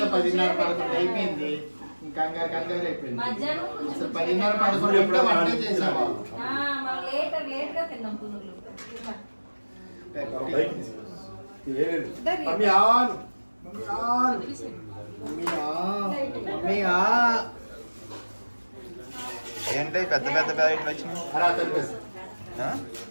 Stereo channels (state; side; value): inverted; both; correlation -1.00